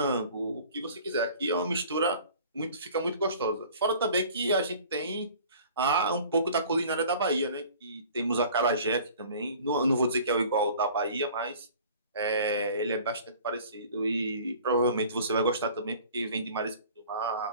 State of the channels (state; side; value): inverted; both; correlation -0.48